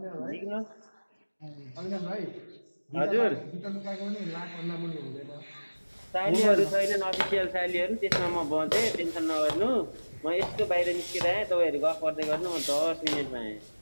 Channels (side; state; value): both; inverted; correlation -1.00